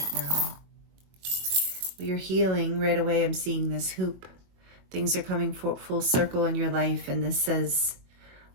now? Well, you're healing right away. I'm seeing this hoop. Things are coming full circle in your life, and this says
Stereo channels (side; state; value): left; late; 22 ms